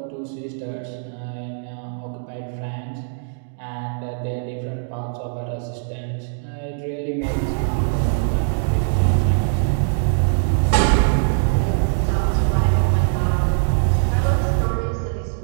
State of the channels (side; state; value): left; silent; digital silence